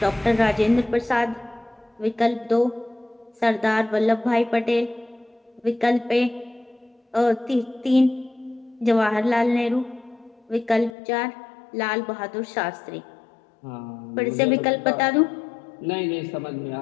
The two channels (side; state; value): right; drops out; at 10.9 s